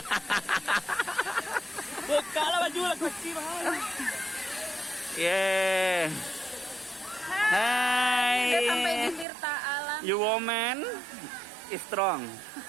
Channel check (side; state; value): left; drops out; at 9.2 s